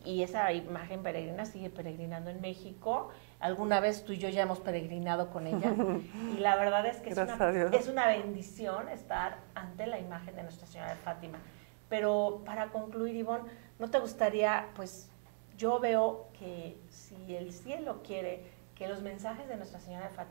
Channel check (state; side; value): silent; left; digital silence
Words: esa imagen peregrina sigue peregrinando en México. Alguna vez tú y yo ya hemos peregrinado con ella, y la verdad es que es una bendición estar ante la imagen de Nuestra Señora de Fátima. Pero para concluir, Ivonne, ¿no te gustaría, pues yo veo que si el cielo quiere que los mensajes de Nuestra Señora de